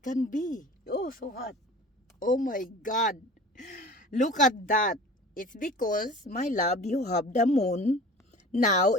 be. Oh, so hot. Oh my God. Look at that. It's because, my love, you have the moon. Now,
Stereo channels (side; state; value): both; normal; correlation 0.41